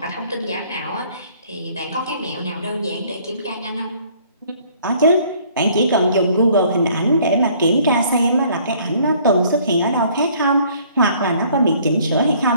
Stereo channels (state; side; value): inverted; both; correlation -0.59